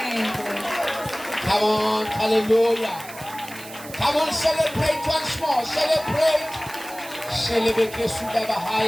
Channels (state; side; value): noise; right; hiss, 16 dB below the sound